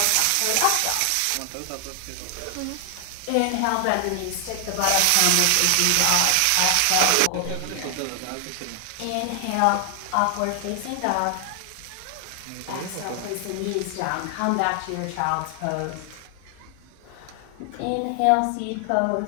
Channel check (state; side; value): different; both; correlation 0.00